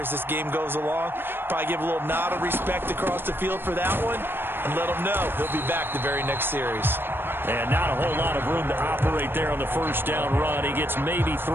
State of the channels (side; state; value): left; late; 0.10 ms